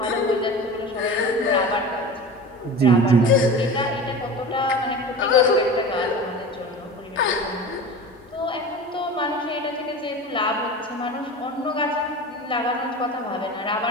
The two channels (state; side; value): normal; both; correlation 0.33